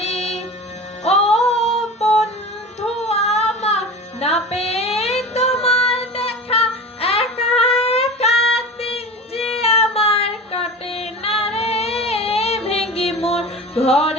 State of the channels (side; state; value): both; normal; correlation 0.33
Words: ও বন্ধু আমার, না পেয়ে তোমার দেখা, একা একা দিন যে আমার কাটে না রে। ভেঙে মোর